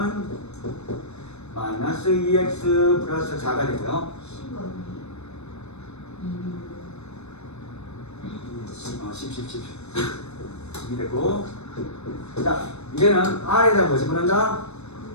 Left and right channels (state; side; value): late; right; 0.81 ms